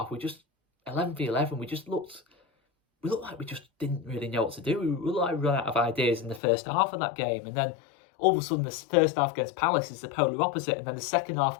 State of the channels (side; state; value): right; drops out; at 6.4 s